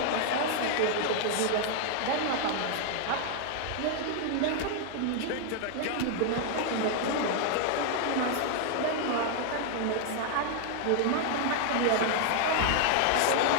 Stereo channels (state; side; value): different; both; correlation 0.00